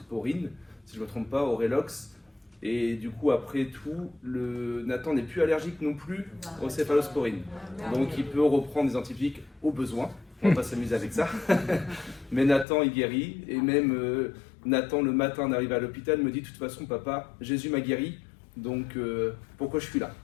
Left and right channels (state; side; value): drops out; right; at 12.7 s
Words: si je ne me trompe pas, Orelox. Et du coup, après tout, Nathan n'est plus allergique non plus aux céphalosporines. Donc il peut reprendre des antibiotiques au besoin. On va pas s'amuser avec ça. Mais Nathan, il guérit. Et même Nathan, le matin, on arrive à l'hôpital, me dit de toute façon, papa, Jésus m'a guéri. Donc pourquoi je suis là?